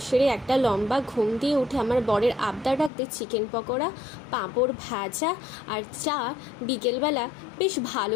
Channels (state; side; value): drops out; right; at 2.9 s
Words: সেরে একটা লম্বা ঘুম দিয়ে উঠে আমার বরের আবদার রাখতে চিকেন পকোড়া, পাঁপড় ভাজা আর চা বিকেলবেলা বেশ